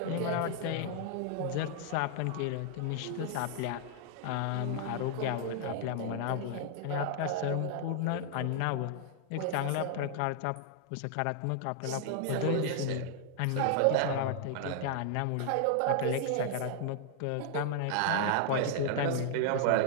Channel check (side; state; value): both; different; correlation -0.01